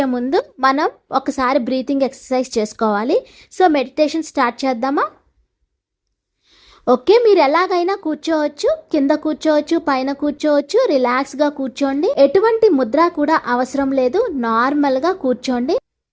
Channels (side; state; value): both; identical; correlation 1.00